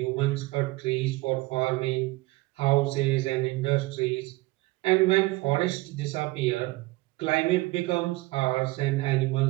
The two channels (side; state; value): left; quieter; 21.2 dB